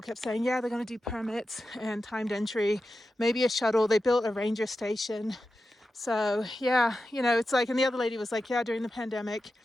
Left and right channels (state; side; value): normal; both; correlation 0.91